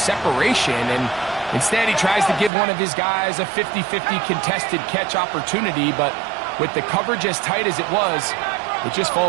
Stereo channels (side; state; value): left; drops out; at 2.5 s